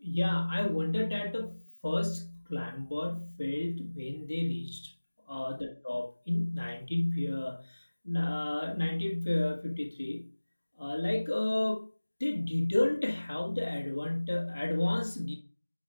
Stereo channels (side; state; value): both; inverted; correlation -1.00